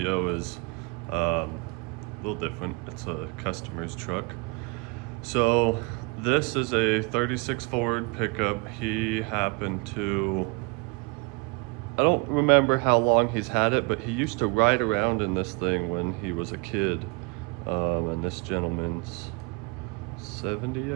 is a little different. It's a customer's truck. So this is a 36 Ford pickup. He happened to, I don't remember how long he's had it, but he used to ride around in this thing when he was a kid. And this gentleman's 70,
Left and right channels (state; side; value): quieter; left; 30.3 dB